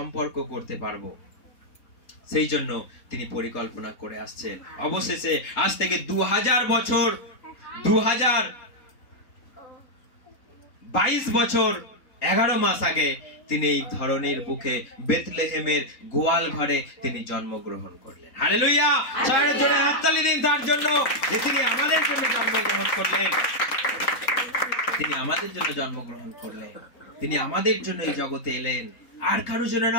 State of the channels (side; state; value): right; late; 3.9 ms